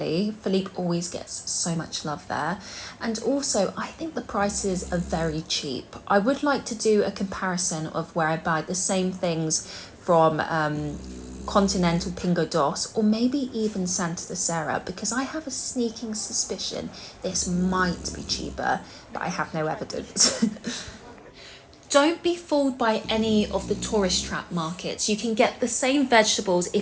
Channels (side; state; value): both; identical; correlation 1.00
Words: Philippe always gets so much love there. And also, I think the prices are very cheap. I would like to do a comparison of where I buy the same things from Continental Pingo Dos, or maybe even Santa Teresa, because I have a sneaking suspicion this might be cheaper, but I have no evidence. Don't be fooled by any of the tourist trap markets. You can get the same vegetables